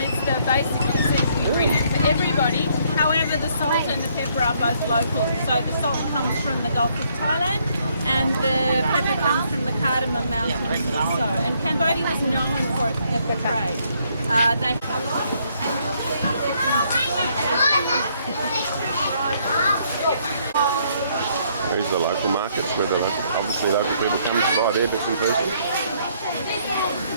It's the basic seasoning ingredient for everybody. However, the salt and the pepper are both local. So the salt comes from the Gulf of Thailand and the pepper comes from the Cardamom Mountains also. And Cambodia was known for its pepper trade. These are the local markets where the obviously local people come to buy their bits and pieces.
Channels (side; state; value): both; inverted; correlation -0.69